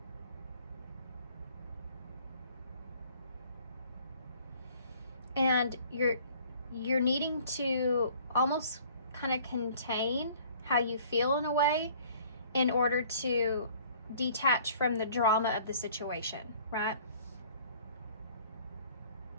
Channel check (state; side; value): inverted; both; correlation -0.54